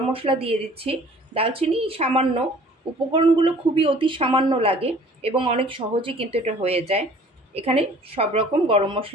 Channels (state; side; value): normal; both; correlation 0.51